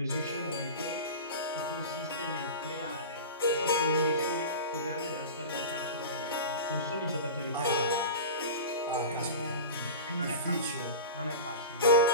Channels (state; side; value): inverted; both; correlation -0.30